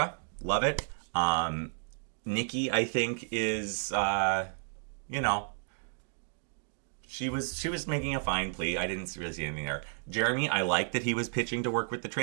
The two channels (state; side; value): silent; left; digital silence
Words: Love it. Nikki, I think, is, she was making a fine plea. I didn't really see anything there. Jeremy, I like that he was pitching to work with the